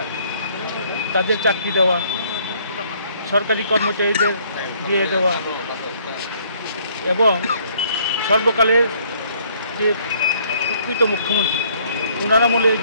তাদের চাকরি দেওয়া, সরকারি কর্মচারীদের দিয়ে দেওয়া এবং সর্বকালের যে প্রকৃত মুখ্যমন্ত্রী ওনার আমলে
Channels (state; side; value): inverted; both; correlation -0.63